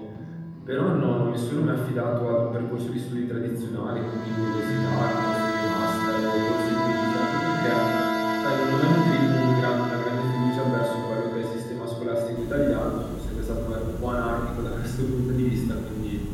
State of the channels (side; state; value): both; identical; correlation 1.00